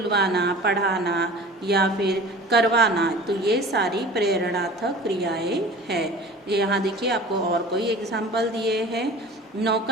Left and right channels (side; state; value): both; normal; correlation 0.41